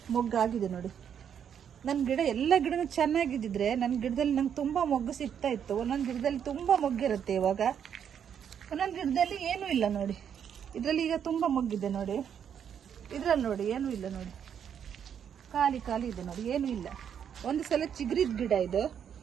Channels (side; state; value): left; quieter; 8.4 dB